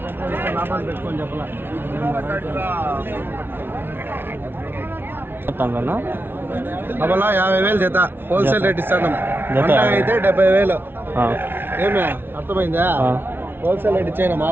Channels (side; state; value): left; late; 0.11 ms